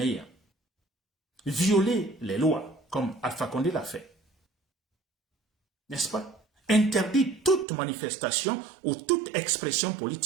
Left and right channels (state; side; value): drops out; left; at 7.7 s